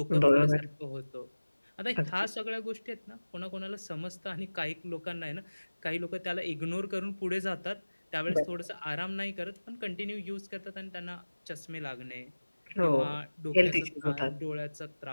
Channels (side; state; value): both; inverted; correlation -1.00